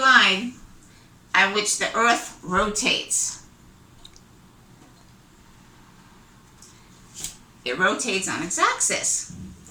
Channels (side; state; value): both; identical; correlation 1.00